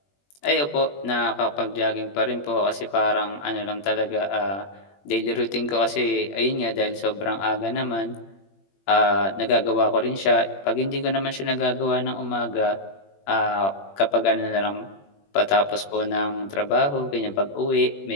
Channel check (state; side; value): late; right; 21 ms